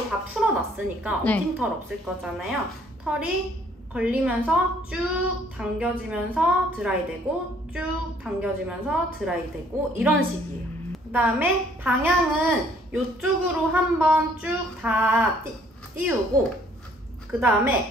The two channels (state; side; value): normal; both; correlation 0.62